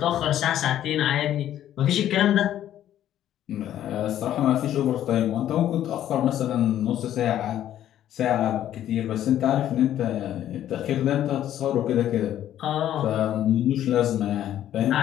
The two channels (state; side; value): quieter; right; 11.7 dB